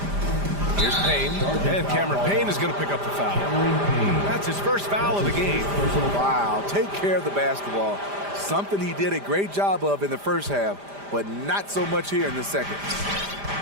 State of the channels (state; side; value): late; left; 5.0 ms